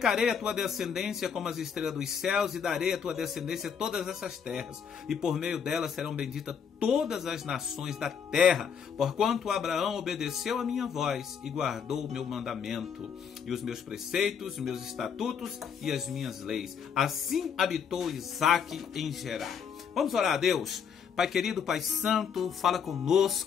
a tua descendência como as estrelas dos céus, e darei à tua descendência todas essas terras, e por meio delas serão benditas todas as nações da terra, porquanto Abraão obedeceu a minha voz e guardou o meu mandamento, e os meus preceitos, os meus estatutos e as minhas leis. Assim habitou Isaque em Gerar. Vamos orar a Deus. Pai querido, Pai santo, fala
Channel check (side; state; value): right; quieter; 7.2 dB